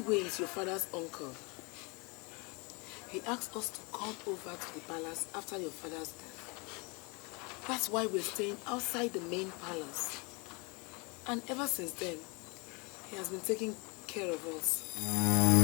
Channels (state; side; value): quieter; right; 29.5 dB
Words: is your father's uncle. He asked us to come over to the palace after your father's death. That's why we're staying outside the main palace. And ever since then, he has been taking care of us.